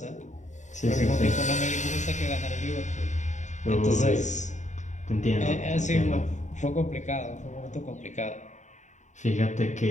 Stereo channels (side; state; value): right; late; 0.35 ms